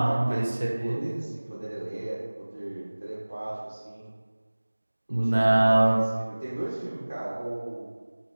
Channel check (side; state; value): both; inverted; correlation -1.00